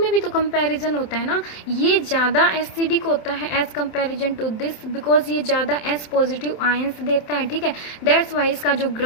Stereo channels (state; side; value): late; right; 27 ms